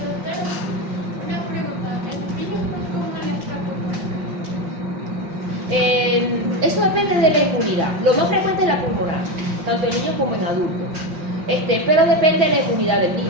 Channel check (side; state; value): left; late; 5.6 ms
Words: Una pregunta. Eso depende de la inmunidad. Lo más frecuente es la pulmonar, tanto en niños como en adultos. Pero depende de la inmunidad del